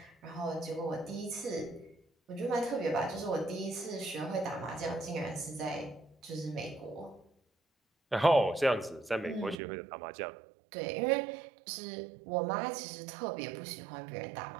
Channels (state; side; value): drops out; left; at 9.6 s